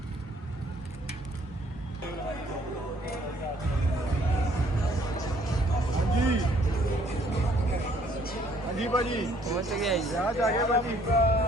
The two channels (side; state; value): both; normal; correlation 0.62